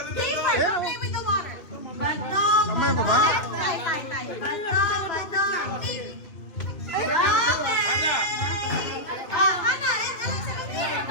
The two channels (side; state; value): right; late; 2.7 ms